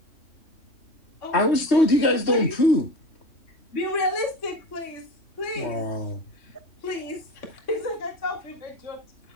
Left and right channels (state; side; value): late; right; 3.2 ms